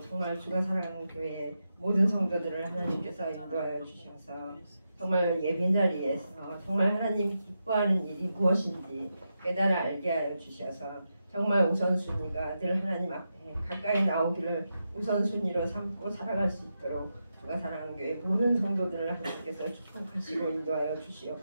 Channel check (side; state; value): both; inverted; correlation -0.87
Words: 정말 주가 사랑하는 교회 모든 성도들을 하나님께서 인도하여 주셔서 정말 예배 자리에서 정말 하나님 기뻐하는 일이 무엇인지 깨달아 알게 하여 주셔서 정말 우선순위가 늘 하나님 앞에 가까이 나오기를 우선순위로 삼고 살아갈 수 있도록 주가 사랑하는 교회 모든 성도들을 하나님께서 축복하시고 인도하여